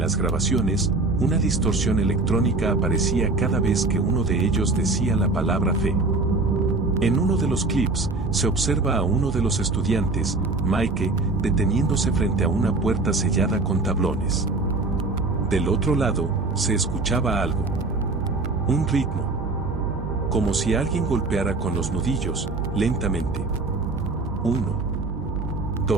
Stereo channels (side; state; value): left; quieter; 3.4 dB